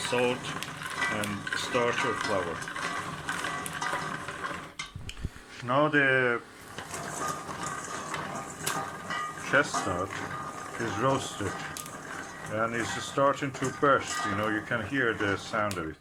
and starch or flour. Now the chestnut is roasted and it's starting to burst. You can hear the sound of it.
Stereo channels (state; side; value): identical; both; correlation 1.00